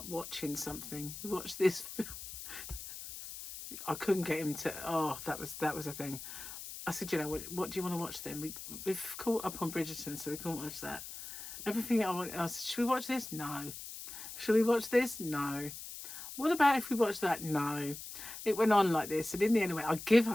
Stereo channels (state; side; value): noise; left; hiss, 10 dB below the sound